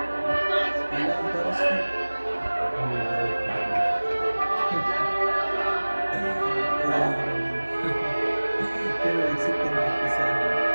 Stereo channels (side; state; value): both; inverted; correlation -1.00